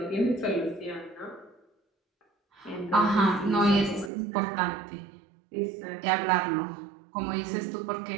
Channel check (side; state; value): left; drops out; at 4.1 s